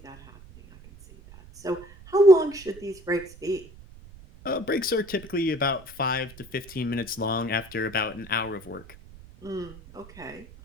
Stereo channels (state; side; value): noise; right; rumble, 20 dB below the sound